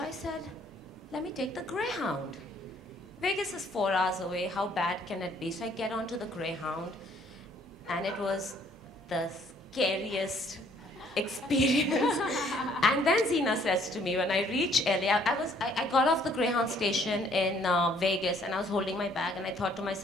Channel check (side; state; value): both; normal; correlation 0.62